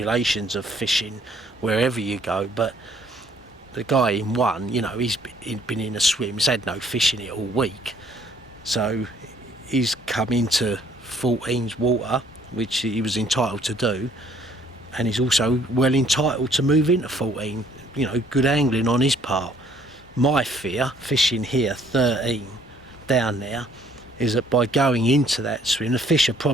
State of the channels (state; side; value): normal; both; correlation 0.62